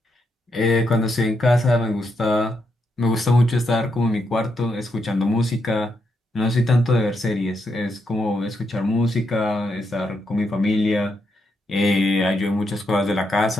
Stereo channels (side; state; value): both; normal; correlation 0.81